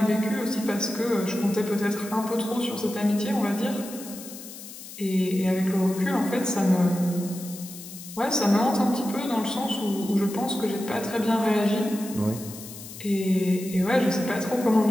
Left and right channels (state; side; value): noise; left; hiss, 14 dB below the sound